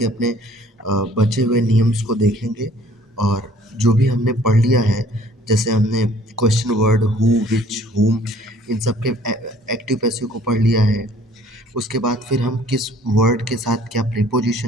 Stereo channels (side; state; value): both; normal; correlation 0.56